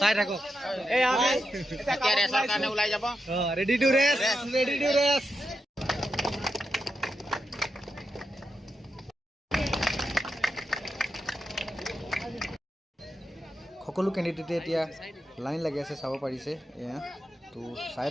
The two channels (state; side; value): normal; both; correlation 0.87